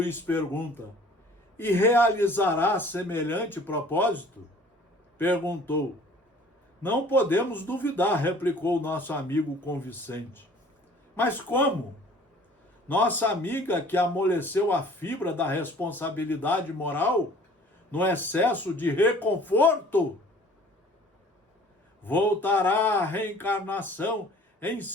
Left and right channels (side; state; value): both; normal; correlation 0.51